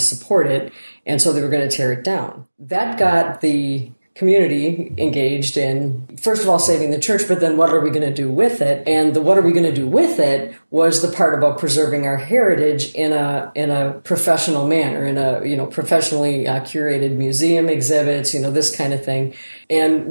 it. And so they were going to tear it down. That got the community engaged in, first of all, saving the church, but then what are we going to do with it? And the what are we going to do with it was the part about preserving our heritage in a professional manner, in a professionally curated museum exhibits, this kind of thing. And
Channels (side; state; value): both; inverted; correlation -1.00